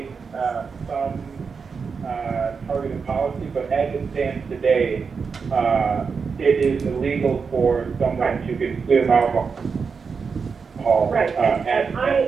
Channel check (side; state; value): left; quieter; 5.4 dB